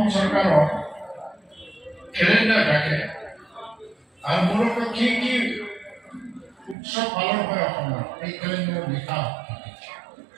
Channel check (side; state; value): left; drops out; at 6.8 s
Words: চৰকাৰৰ কেলেণ্ডাৰ থাকে আৰু মূলতঃ কি উৎসৱ পালন হয় অসমত এই কেলেণ্ডাৰত লিখা থাকে